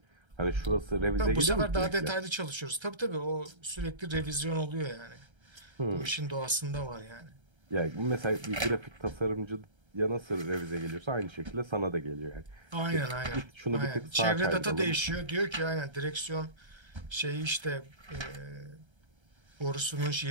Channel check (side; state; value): left; late; 1.3 ms